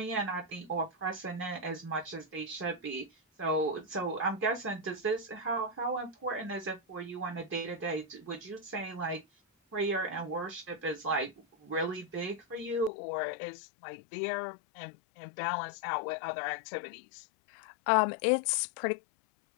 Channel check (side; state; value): right; drops out; at 12.9 s